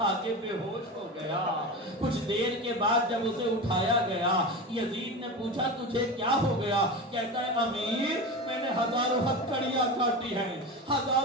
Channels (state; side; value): normal; both; correlation 0.25